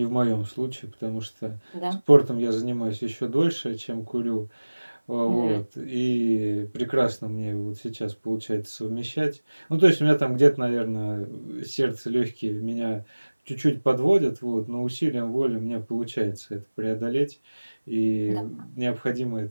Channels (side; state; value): both; inverted; correlation -1.00